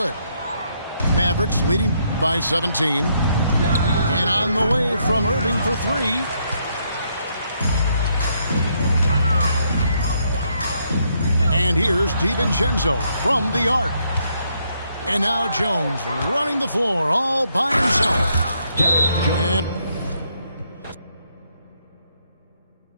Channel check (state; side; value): inverted; both; correlation -0.74